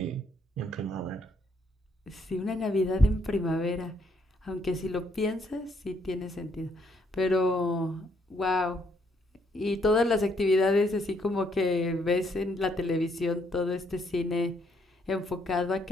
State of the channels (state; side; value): normal; both; correlation 0.71